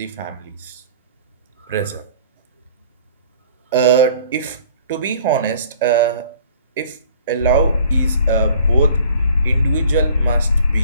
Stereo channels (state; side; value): inverted; both; correlation -0.50